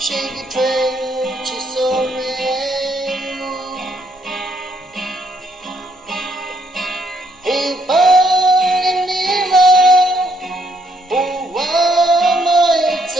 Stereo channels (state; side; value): normal; both; correlation 0.71